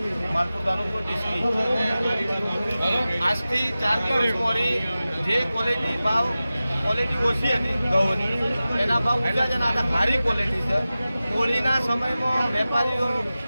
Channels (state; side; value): inverted; both; correlation -0.96